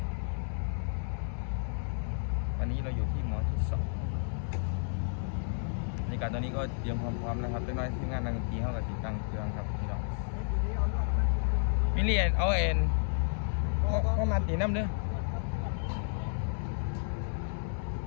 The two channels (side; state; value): right; silent; digital silence